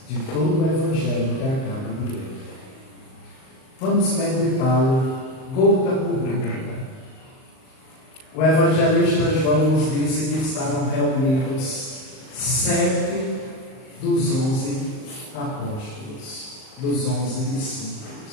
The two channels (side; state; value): right; late; 38 ms